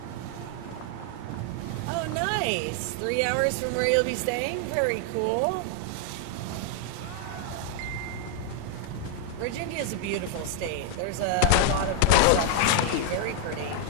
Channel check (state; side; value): different; both; correlation 0.00